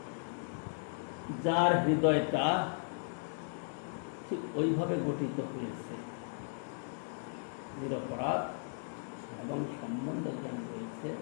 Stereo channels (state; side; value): silent; right; digital silence